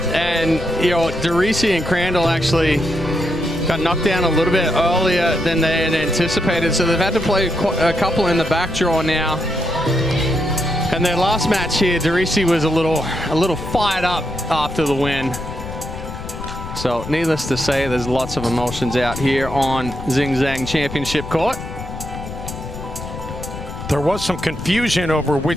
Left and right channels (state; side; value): noise; left; rumble, 9 dB below the sound